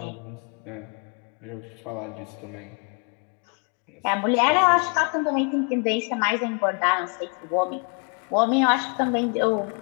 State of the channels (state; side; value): quieter; right; 38.1 dB